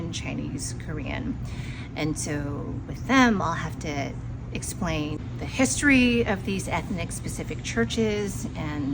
Chinese, Korean. And so with them, I'll have to explain the history of these ethnic specific churches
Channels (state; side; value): identical; both; correlation 1.00